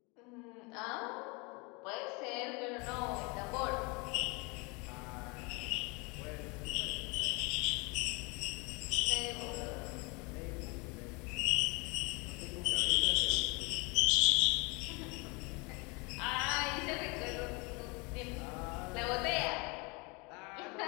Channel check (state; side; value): quieter; right; 29.2 dB